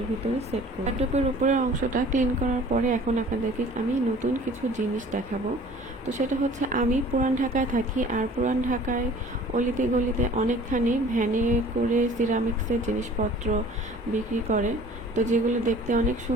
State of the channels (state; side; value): normal; both; correlation 0.49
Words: ভিতরে সেট করব। টবের উপরের অংশটা ক্লিন করার পরে এখন আপনাদেরকে আমি নতুন কিছু জিনিস দেখাবো। তো সেটা হচ্ছে, আমি পুরান ঢাকায় থাকি, আর পুরান ঢাকায় অলিতে গলিতে অনেকখানি ভ্যানে করে সিরামিক্সের জিনিসপত্র বিক্রি করে। তো যেগুলো দেখতে অনেক